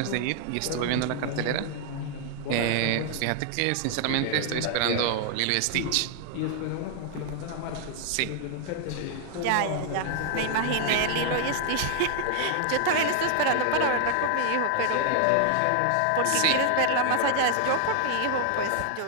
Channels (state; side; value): different; both; correlation 0.00